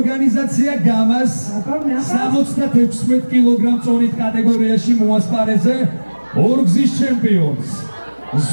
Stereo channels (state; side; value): inverted; both; correlation -1.00